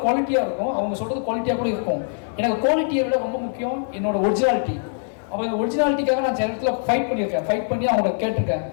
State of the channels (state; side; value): silent; right; 64 dB below the other